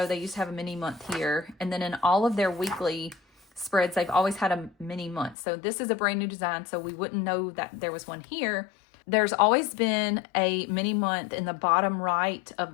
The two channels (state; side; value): drops out; right; at 5.4 s